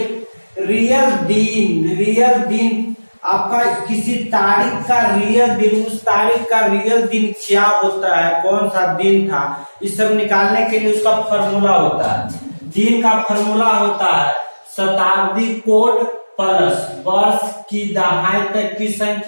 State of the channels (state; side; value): inverted; both; correlation -1.00